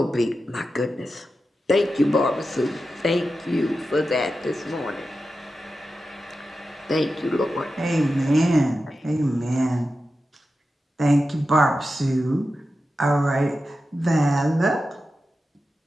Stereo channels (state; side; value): normal; both; correlation 0.91